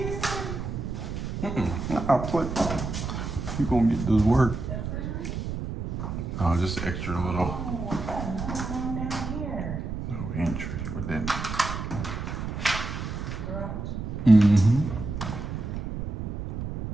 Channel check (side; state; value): right; noise; rumble, 5 dB below the sound